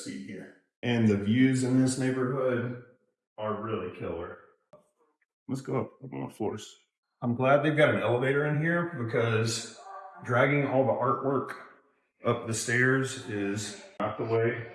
here. And the views in this neighborhood are really killer. Let's go up on the floors. I'm glad they've got an elevator in here because dragging all the artwork up the stairs is not the way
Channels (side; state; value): both; identical; correlation 1.00